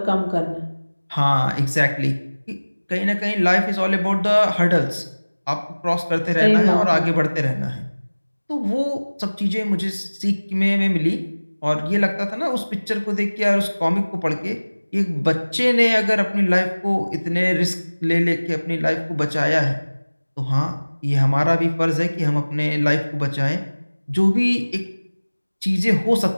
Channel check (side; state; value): both; inverted; correlation -1.00